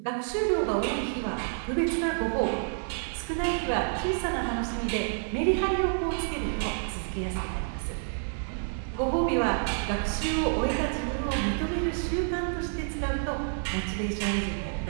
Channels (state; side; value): silent; left; digital silence